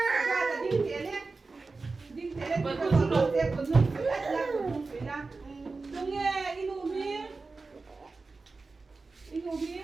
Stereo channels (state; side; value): quieter; left; 3.9 dB